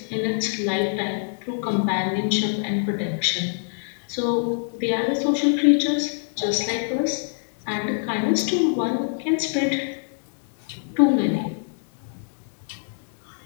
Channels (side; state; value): right; silent; digital silence